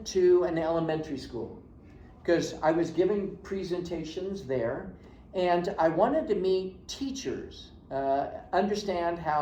to an elementary school because I was giving presentations there, and I wanted to meet teachers, understand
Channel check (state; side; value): identical; both; correlation 1.00